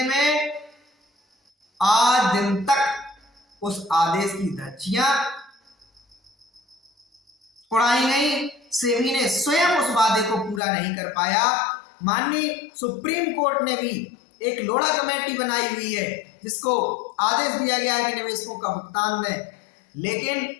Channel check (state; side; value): drops out; right; at 10.6 s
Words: में। आज दिन तक उस आदेश की धज्जियां उड़ाई गई। सेबी ने स्वयं उस वादे को पूरा नहीं कर पाया। माननीय सुप्रीम कोर्ट ने भी एक लोढ़ा कमेटी बनाई हुई है जिसको आदेश दिया गया है कि निवेशकों का भुगतान दें, लेकिन